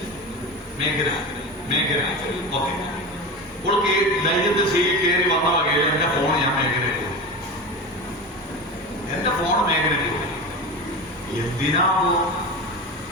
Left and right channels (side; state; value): both; normal; correlation 0.26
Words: മേഘന. മേഘന. ഓക്കെ. അവൾക്ക് ധൈര്യത്തിൽ സീറ്റിൽ കയറി വന്ന വകയിൽ എന്റെ ഫോൺ ഞാൻ മേഘനയ്ക്ക് കൊടുത്തു. എന്റെ ഫോൺ മേഘനയ്ക്ക് കൊടുത്തു. എന്തിനാവോ